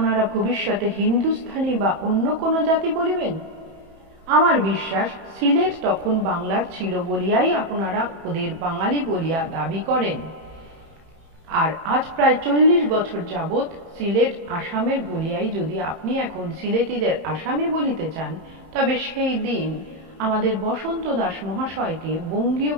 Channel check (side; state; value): left; late; 31 ms